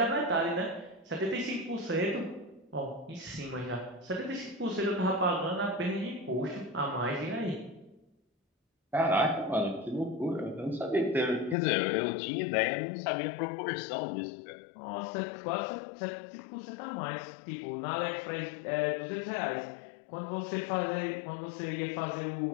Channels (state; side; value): drops out; right; at 11.6 s